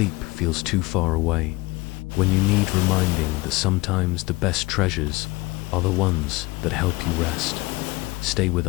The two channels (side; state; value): right; quieter; 21.8 dB